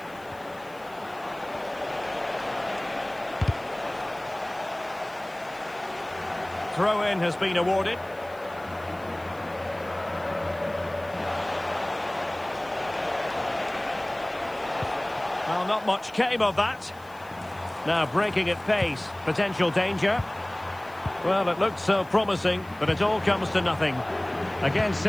Throw-in has been awarded. Well, not much came of that. Now breaking at pace. Potential danger. Well, it looked so promising, but it all comes to nothing. Again,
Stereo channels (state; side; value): noise; left; hiss, 26 dB below the sound